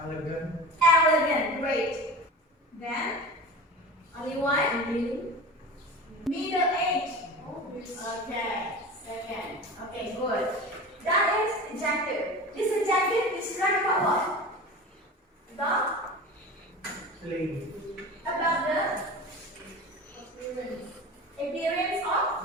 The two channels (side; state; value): both; normal; correlation 0.33